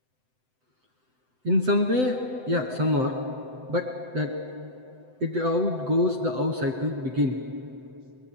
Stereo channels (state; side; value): late; left; 7.8 ms